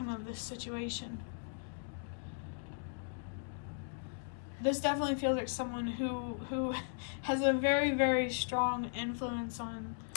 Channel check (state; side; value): silent; right; digital silence